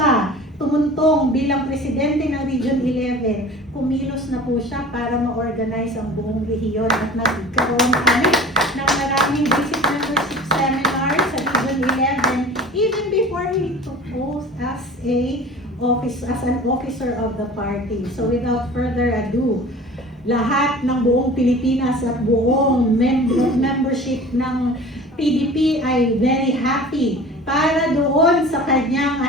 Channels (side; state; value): both; normal; correlation 0.40